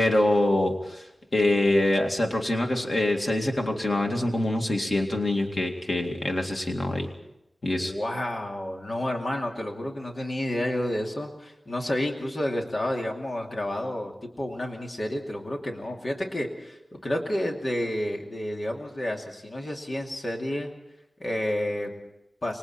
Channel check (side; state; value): both; normal; correlation 0.94